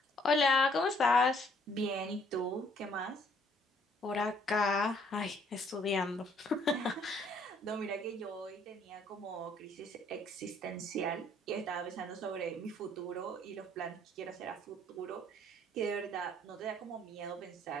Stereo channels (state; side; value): normal; both; correlation 0.63